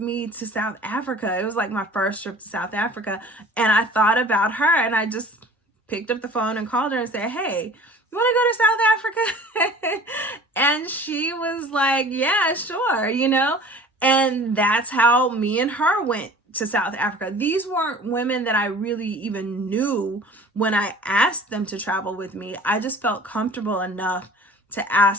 me to South Africa? It was like my first trip to South Africa. And I thought about her, and I just picked up the phone and called her and said, hey, you want to go to South Africa? And she was like, yeah, sure, you know? And that's how me and her went to South Africa. These weren't women that I really even knew when I asked them to travel with me. I just felt comfortable enough to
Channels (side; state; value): both; normal; correlation 0.45